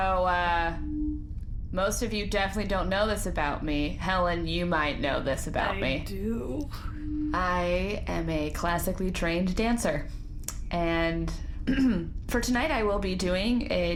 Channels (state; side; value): identical; both; correlation 1.00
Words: most of you definitely don't know this about me. Helen, you might know this about me. I do. I am a classically trained dancer. And for tonight I will be doing a